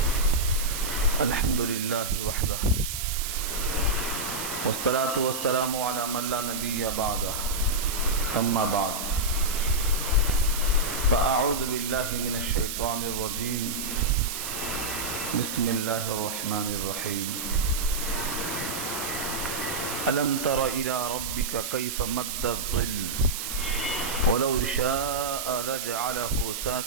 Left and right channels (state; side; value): noise; right; hiss, 4 dB below the sound